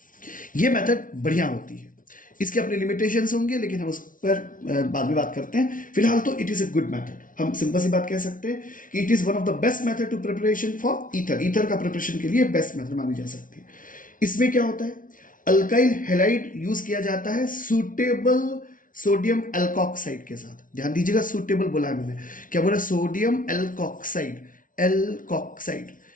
ये मेथड बढ़िया होती है, इसके अपने लिमिटेशंस होंगे, लेकिन हम उस पर बाद में बात करते हैं। फिलहाल तो it is a good method. हम सिंपल सी बात कह सकते हैं कि it is one of the best method to preparation for ether. Ether का प्रिपरेशन के लिए बेस्ट मेथड मानी जा सकती है। इसमें क्या होता है? अल्काइल हैलाइड यूज किया जाता है सूटेबल सोडियम एल्कोक्साइड के साथ। ध्यान दीजिएगा, सूटेबल बोला है मैंने, क्या बोला? Sodium alkoxide, alkoxide,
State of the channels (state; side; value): late; right; 0.39 ms